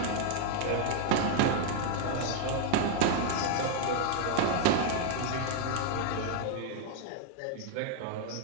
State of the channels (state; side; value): different; both; correlation 0.00